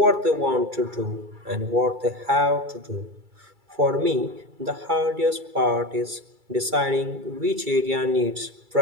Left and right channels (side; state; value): left; late; 2.3 ms